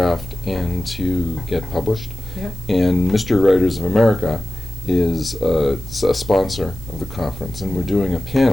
and to get published. Yeah. And Mystery Writers of America is a sponsor of the conference, and we're doing a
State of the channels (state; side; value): noise; right; hiss, 22 dB below the sound